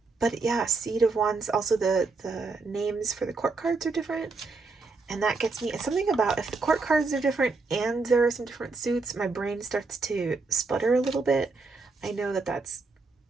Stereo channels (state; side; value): quieter; left; 4.0 dB